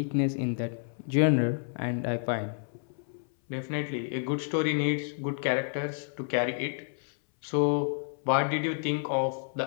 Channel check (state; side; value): silent; right; 58 dB below the other